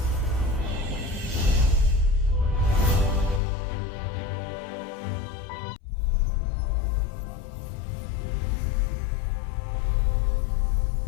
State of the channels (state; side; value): drops out; right; at 3.4 s